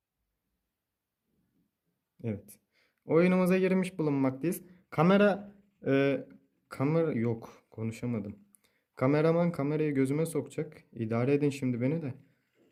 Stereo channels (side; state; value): both; identical; correlation 1.00